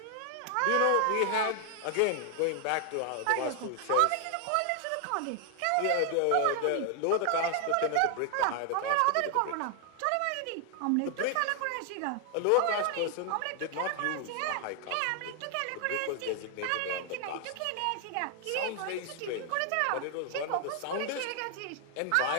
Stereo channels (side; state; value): both; different; correlation 0.00